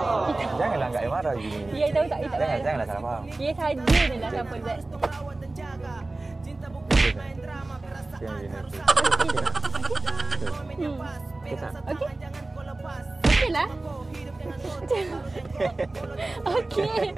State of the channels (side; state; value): left; quieter; 3.0 dB